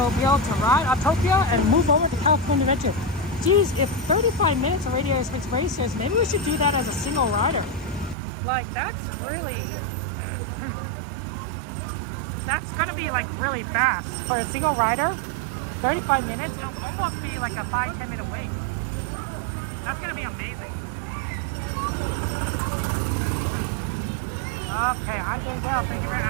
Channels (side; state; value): left; drops out; at 8.2 s